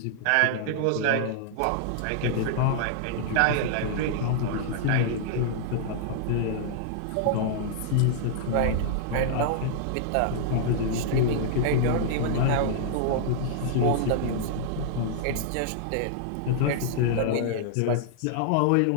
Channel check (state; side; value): different; both; correlation -0.01